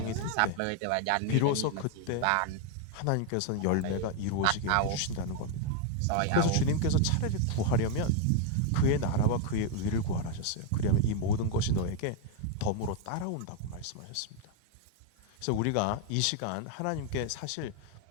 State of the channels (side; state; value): both; different; correlation 0.01